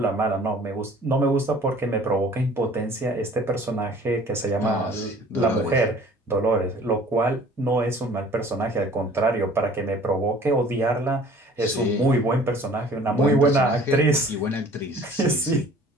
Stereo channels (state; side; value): normal; both; correlation 0.50